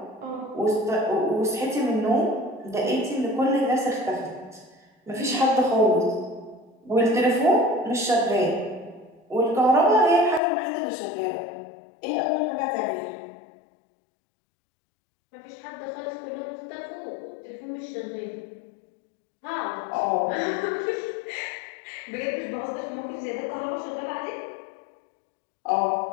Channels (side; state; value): right; drops out; at 10.4 s